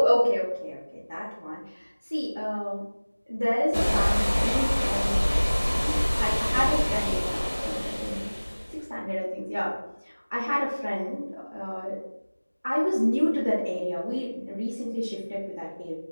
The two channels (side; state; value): both; inverted; correlation -1.00